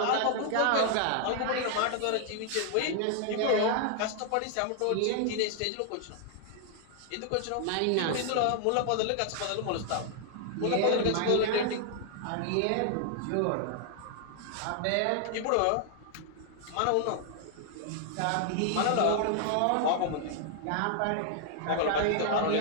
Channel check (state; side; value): different; both; correlation 0.00